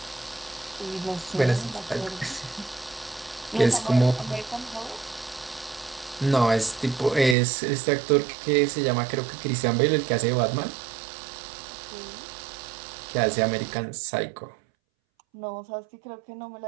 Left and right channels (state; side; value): drops out; left; at 7.4 s